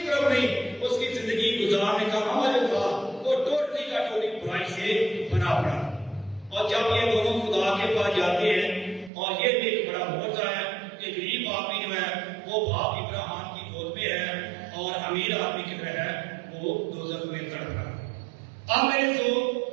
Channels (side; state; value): left; drops out; at 9.1 s